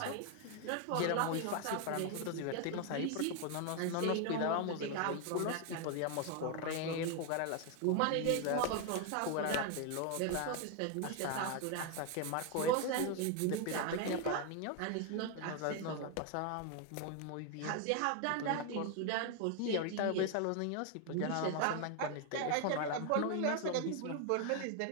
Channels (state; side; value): different; both; correlation 0.01